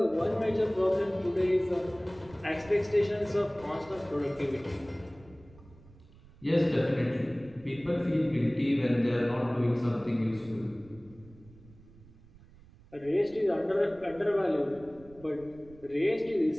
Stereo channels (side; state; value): right; noise; rumble, 23 dB below the sound